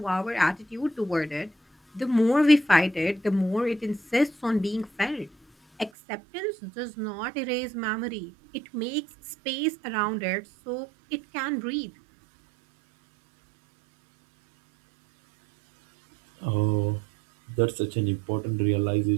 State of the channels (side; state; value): left; drops out; at 5.9 s